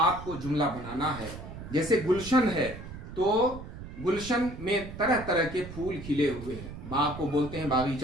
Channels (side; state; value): right; noise; rumble, 12 dB below the sound